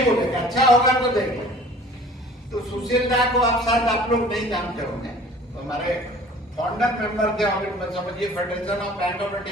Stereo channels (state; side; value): normal; both; correlation 0.48